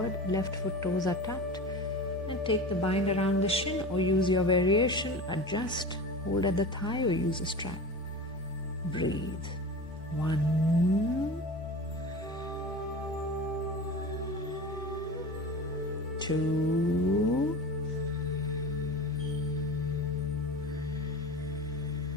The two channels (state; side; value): normal; both; correlation 0.32